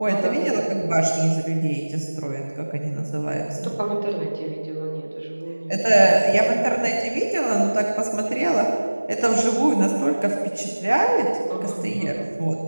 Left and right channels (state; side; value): inverted; both; correlation -1.00